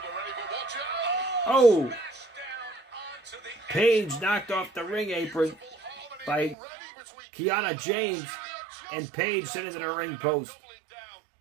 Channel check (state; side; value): drops out; left; at 6.6 s